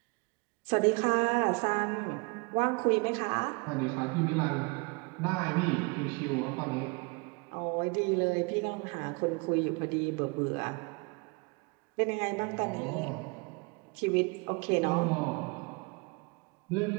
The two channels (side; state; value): left; quieter; 30.0 dB